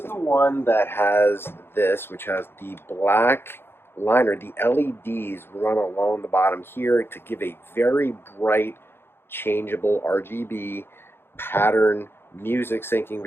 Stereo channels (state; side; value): late; right; 0.11 ms